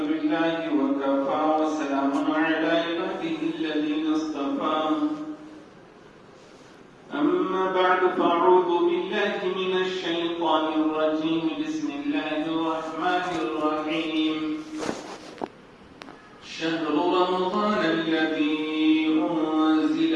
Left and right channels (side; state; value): both; identical; correlation 1.00